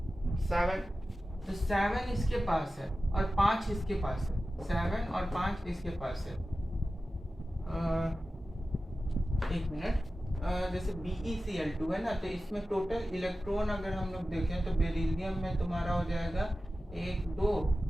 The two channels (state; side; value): normal; both; correlation 0.94